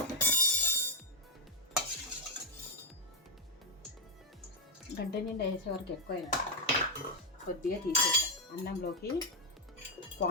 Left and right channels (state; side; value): normal; both; correlation -0.05